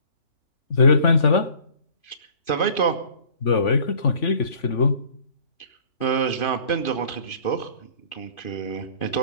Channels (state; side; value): late; right; 3.5 ms